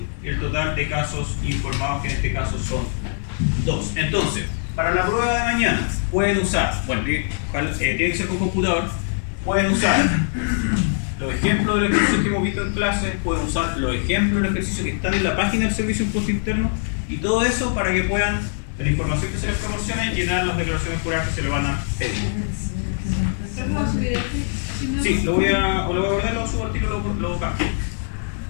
el total de casos informados, que en este caso son 2. Entonces, para la prueba de mañana pueden usar, bueno, tiene que ser con computador, pueden usar los ejemplos de los ejercicios que hemos visto en clase, pueden usar los ejemplos de los ejercicios que están en la página del Servicio de Impuesto Interno y todo eso para que puedan, de la información que se les proporcione, llenar las declaraciones juradas que se le van a pedir. Sí, lo voy a guardar, lo subo al tiro, lo cambio.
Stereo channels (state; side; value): silent; right; digital silence